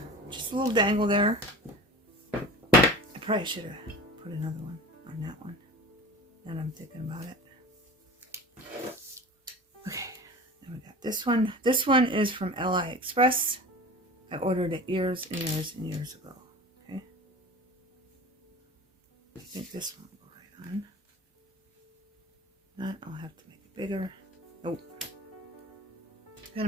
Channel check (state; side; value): normal; both; correlation 0.36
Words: Just a little dangle there. I probably should have put another one on that one. Now I'm thinking about it. Okay, then we got this one. This one is from AliExpress. I ordered it years and years and years ago. Okay. I think this one will go right on. Not, I'll have to make it bigger. Nope. Gotta